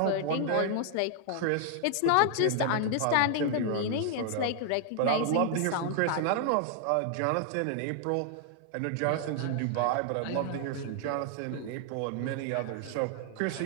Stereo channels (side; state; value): both; different; correlation 0.00